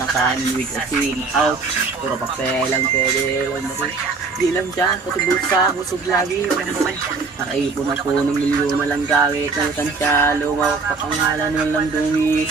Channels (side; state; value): left; quieter; 4.3 dB